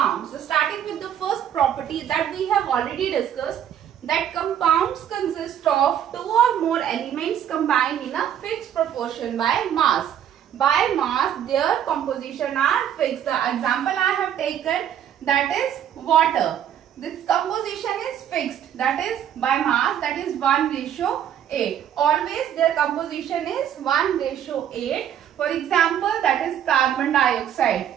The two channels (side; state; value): left; quieter; 9.9 dB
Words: So starting with the first property that we have already discussed, that compounds consist of 2 or more elements combined in a fixed proportion by mass. By mass, their composition are fixed. The example I have taken, that is water. This composition is fixed, that is by mass, that is 1:8. Always their composition is 1:8. For example, that is carbon dioxide.